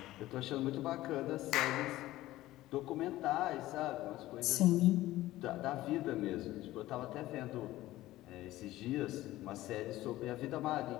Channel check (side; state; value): right; quieter; 16.2 dB